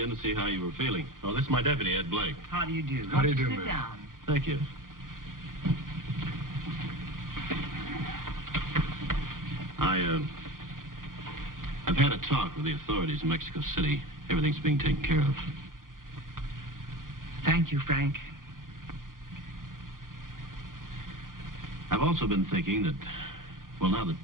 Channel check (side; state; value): left; late; 0.90 ms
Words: to see how you were feeling. Oh, this is my deputy, Ed Blake. How do you do? How do you do, Sit ma'am? down. Thank you. I've had a talk with the authorities in Mexico City. Everything's being taken care of. Thank you, Frank. I've also been thinking that, well, now that